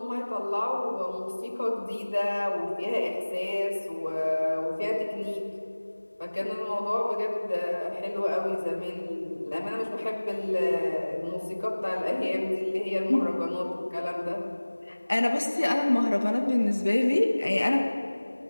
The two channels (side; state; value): both; inverted; correlation -1.00